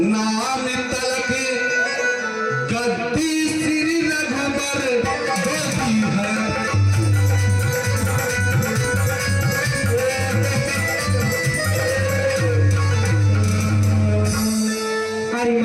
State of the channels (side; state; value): both; identical; correlation 1.00